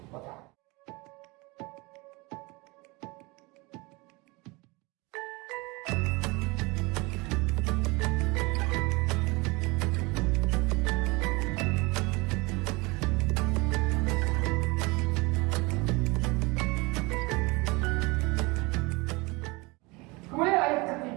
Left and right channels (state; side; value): quieter; left; 25.3 dB